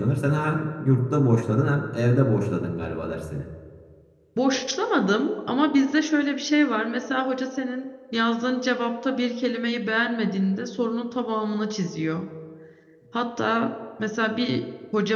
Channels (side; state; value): both; identical; correlation 1.00